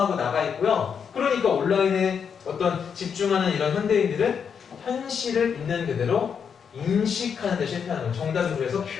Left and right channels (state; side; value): quieter; right; 6.9 dB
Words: 나가 있고요. 그러니까 온라인에 어떤 집중하는 이런 현대인들은 현실을 있는 그대로 인식하는 데 실패하는 거예요. 정답은 그래서